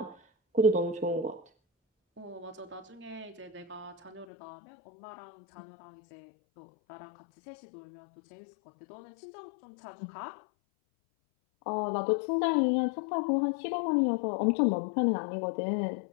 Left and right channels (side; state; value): right; drops out; at 4.2 s